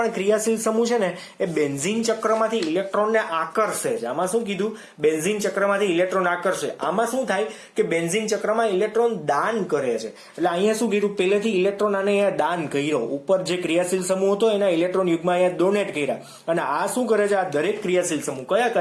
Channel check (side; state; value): both; identical; correlation 1.00